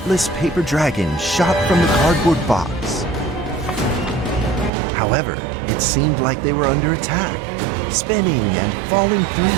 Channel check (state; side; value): drops out; left; at 4.7 s